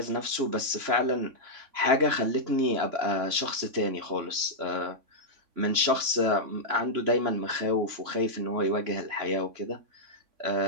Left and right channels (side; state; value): left; late; 3.6 ms